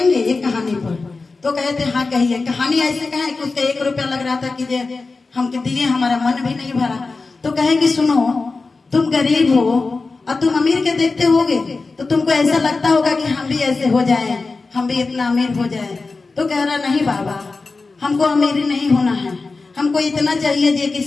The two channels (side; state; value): right; quieter; 3.9 dB